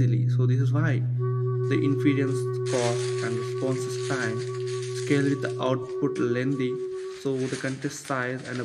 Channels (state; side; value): identical; both; correlation 1.00